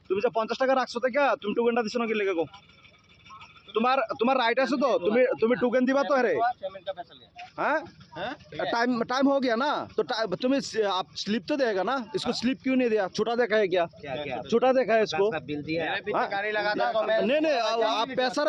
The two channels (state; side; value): identical; both; correlation 1.00